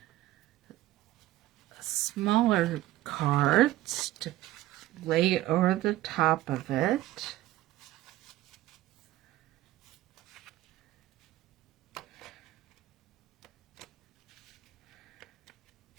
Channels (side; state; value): left; quieter; 15.8 dB